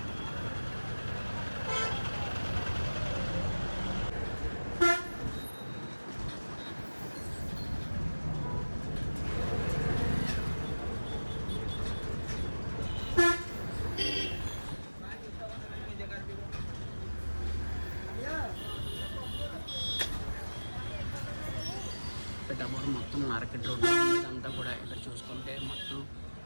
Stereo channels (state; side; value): inverted; both; correlation -1.00